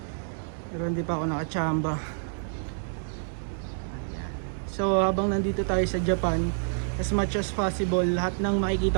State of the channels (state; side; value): silent; left; 58 dB below the other